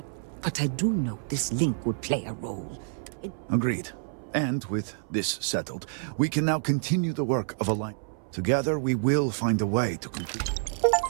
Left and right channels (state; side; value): silent; left; 59 dB below the other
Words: but I do know this link would play a role. Agreed. And with this settled, we can now continue the work of alignment. Together, we will find a way to complete...